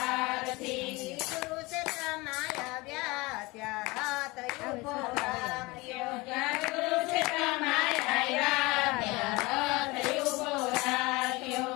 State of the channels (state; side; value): quieter; right; 23.3 dB